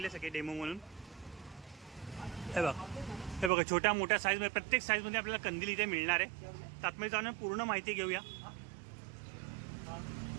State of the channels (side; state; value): left; drops out; at 3.5 s